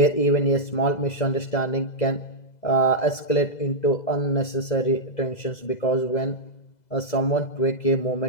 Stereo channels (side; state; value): right; late; 2.0 ms